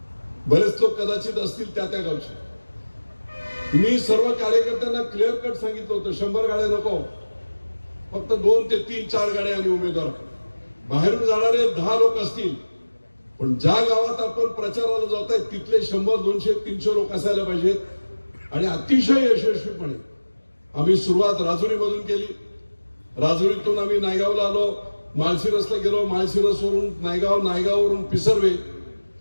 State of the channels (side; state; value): both; inverted; correlation -1.00